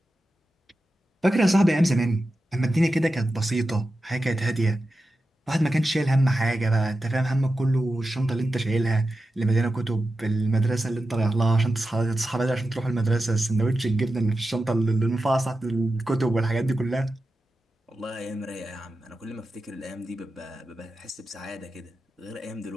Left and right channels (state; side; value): normal; both; correlation 0.91